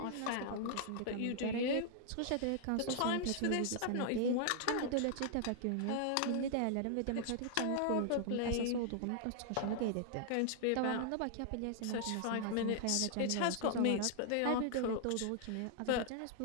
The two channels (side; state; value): both; different; correlation -0.01